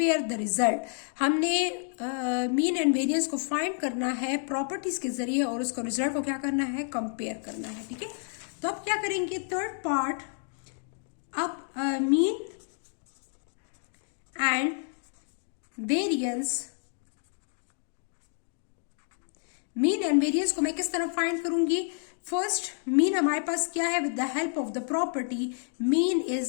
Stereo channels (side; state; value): right; silent; 55 dB below the other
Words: the result. हमने मीन एंड वेरिएंस को फाइंड करना है प्रॉपर्टीज के जरिए और उसको रिजल्ट को क्या करना है, कंपेयर करना है, ठीक है। तो अब क्या करेंगे, थर्ड पार्ट, अब mean and variance, mean and variance को मैं किस तरह फाइंड करूंगी। फर्स्ट मीन हमारे पास क्या है, with the help of the property mean